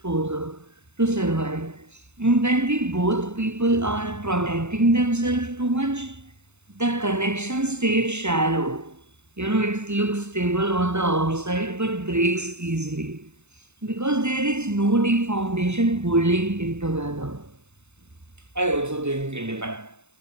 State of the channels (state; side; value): late; left; 0.82 ms